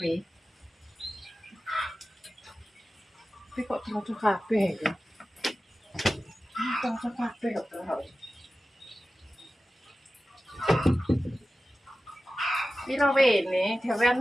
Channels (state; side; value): normal; both; correlation 0.95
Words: Tapi kok cocok kabeh ya. Cocok kabeh kok terus. Piro wene,